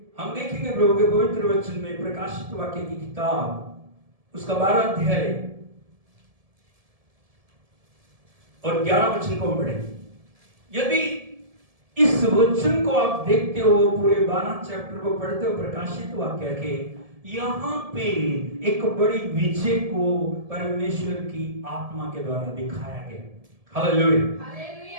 हम देखेंगे प्रभु के पवित्र वचन में प्रकाशित वाक्य की किताब उसका 12 अध्याय और 11 वचन को पढ़ेंगे। यदि इस वचन को आप देखते हो, पूरे 12 चैप्टर को पढ़ते हो प्रकाशित वाक्य के, यहाँ पे एक बड़ी विजय को परमेश्वर की आत्मा के द्वारा दिखाया गया। हालेलुया।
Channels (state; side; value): late; left; 1.7 ms